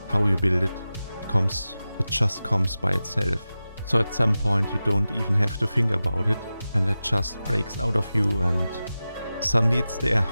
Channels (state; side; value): inverted; both; correlation -0.94